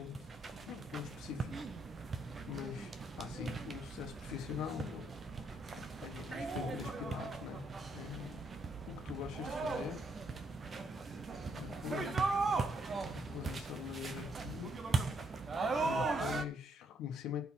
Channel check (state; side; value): normal; both; correlation 0.73